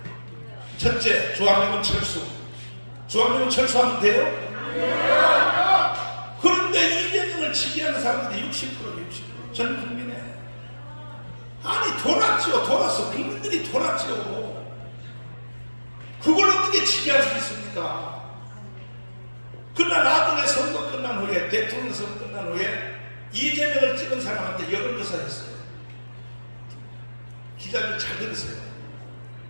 첫째, 주한미군 철수. 주한미군 철수하면 돼요? 그런데 이재명을 지지하는 사람들이 60%, 전 국민에. 아니, 돌았죠. 돌았어. 국민들이 돌았죠. 그걸 어떻게 지지할 수 있습니까? 그러나 나중에 선거 끝난 후에, 대통령 선거 끝난 후에 이재명을 찍은 사람한테 여론조사 했어요. 기자들 잘 들으세요.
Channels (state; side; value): inverted; both; correlation -1.00